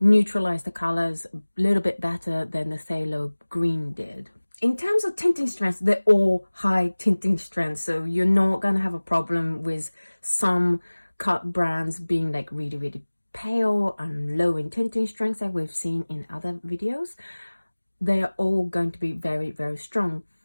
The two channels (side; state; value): both; inverted; correlation -1.00